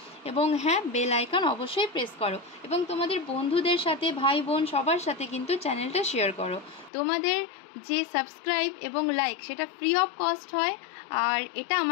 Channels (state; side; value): drops out; right; at 6.9 s